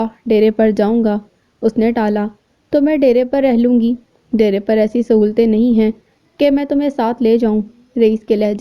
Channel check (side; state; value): both; identical; correlation 1.00